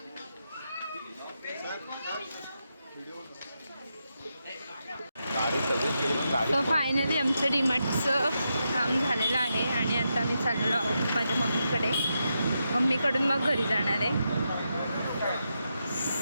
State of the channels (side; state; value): both; inverted; correlation -0.85